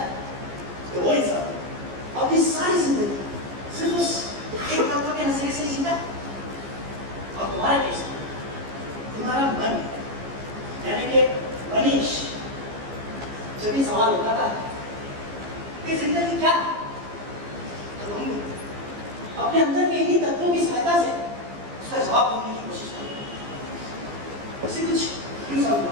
तो वो इंसान अपनी सारी जिंदगी सिर्फ उस एक तत्व के नजरिए से ही जीता। और तुम्हारे केस में तुम्हारा मन यानी कि मनीष जब भी सवाल उठाता है कि जिंदगी क्या है, तो तुम अपने अंदर के इन्हीं तत्वों की सहायता से उसका जवाब ढूंढने की कोशिश करो। इसे कुछ क्यों समझो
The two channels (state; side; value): late; left; 15 ms